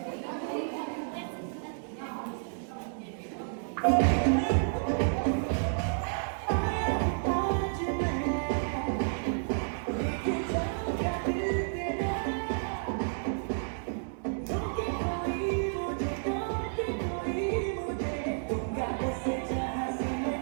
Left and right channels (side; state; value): left; silent; digital silence